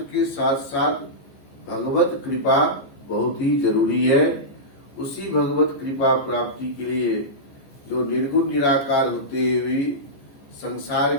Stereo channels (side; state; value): right; late; 14 ms